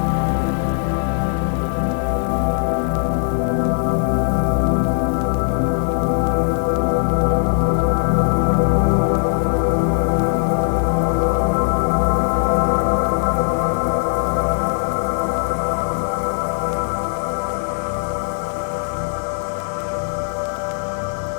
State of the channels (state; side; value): silent; right; digital silence